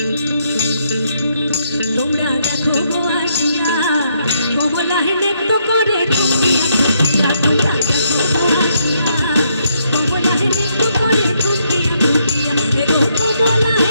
তোমরা দেখো আসিয়া কমলায় নৃত্য করে ঠুকিয়া ঠুকিয়া তোমরা দেখো আসিয়া কমলায় নৃত্য করে ঠুকিয়া ঠুকিয়া এগো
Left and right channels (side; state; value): both; inverted; correlation -0.75